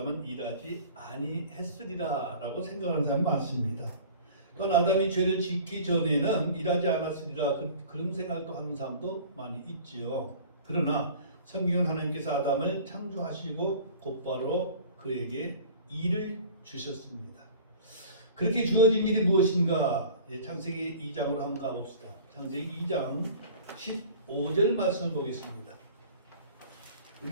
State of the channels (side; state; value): both; inverted; correlation -0.44